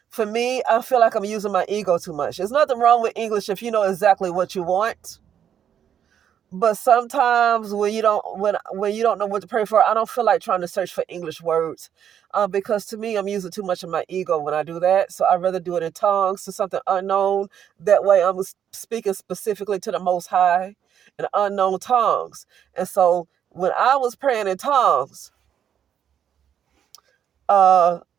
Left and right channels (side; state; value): left; quieter; 9.1 dB